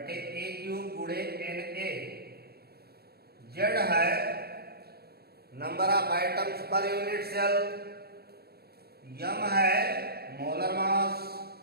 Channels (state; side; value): late; left; 0.46 ms